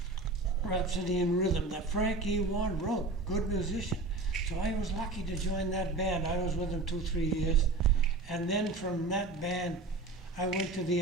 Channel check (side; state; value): left; quieter; 3.3 dB